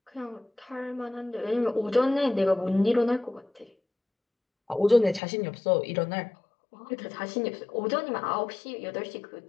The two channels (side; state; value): right; drops out; at 5.2 s